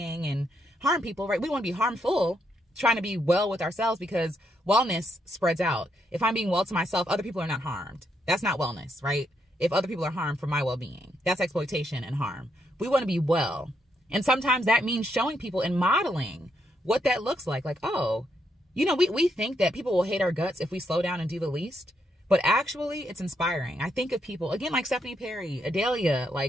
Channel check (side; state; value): both; normal; correlation 0.78